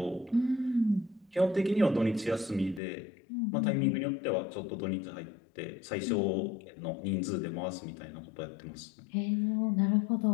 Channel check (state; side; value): drops out; right; at 2.8 s